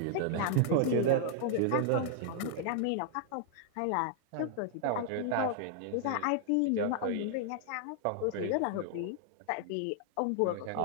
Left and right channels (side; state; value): both; different; correlation -0.01